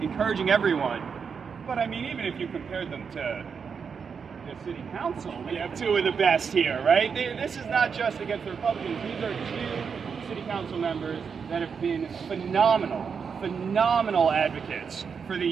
encouraging everyone. But I mean, even if you compared them to the city council, we have two of the best here, right? This is not just against the Republicans. These are two city council members that have been phenomenal advocates for the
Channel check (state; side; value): quieter; left; 6.2 dB